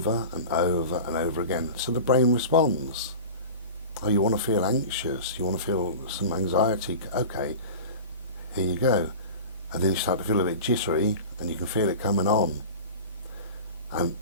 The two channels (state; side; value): inverted; both; correlation -0.34